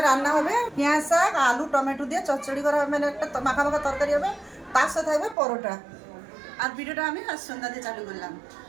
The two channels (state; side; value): drops out; left; at 5.4 s